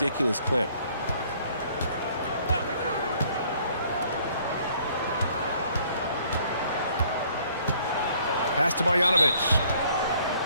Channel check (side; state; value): both; inverted; correlation -0.61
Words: clip. Pass to Marjanovic.